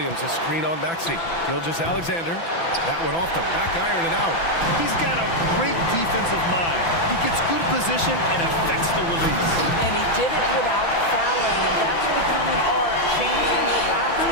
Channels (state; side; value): late; right; 6.0 ms